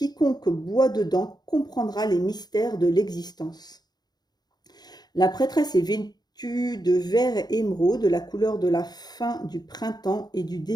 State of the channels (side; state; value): right; late; 0.20 ms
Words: boit dedans comprendra les mystères de l'existence. La prêtresse est vêtue de vert émeraude, la couleur de la fin du printemps et du